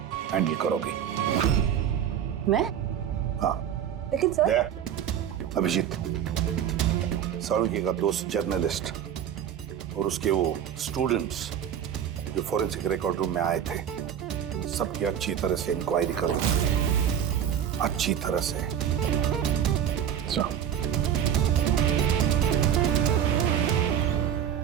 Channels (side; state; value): left; quieter; 9.4 dB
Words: हैंडल करोगी। मैं? हाँ। लेकिन सर। अभिजीत, साळुंखे का दोस्त जर्नलिस्ट और उसके वो स्टूडेंट्स जो फॉरेंसिक रिकॉर्ड रूम में आए थे, सबकी अच्छी तरह से इंक्वायरी करो, अच्छी तरह से।